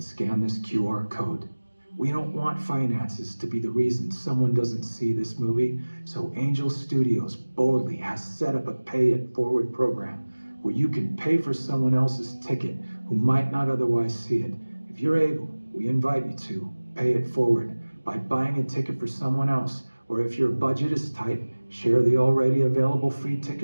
scan this QR code. We don't want finances to be the reason someone doesn't see this movie, so Angel Studios boldly has set up a pay it forward program where you can pay for someone else's ticket who might not otherwise see it. If you're able, we invite you to pay it forward by buying a ticket for someone else, or if your budget is tight, share the already available free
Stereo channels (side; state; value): both; inverted; correlation -1.00